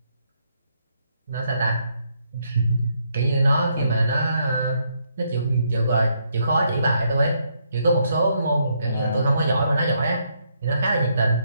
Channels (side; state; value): both; inverted; correlation -0.75